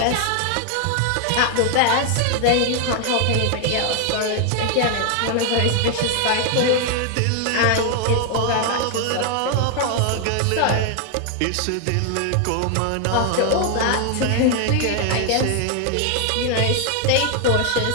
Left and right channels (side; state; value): both; different; correlation 0.00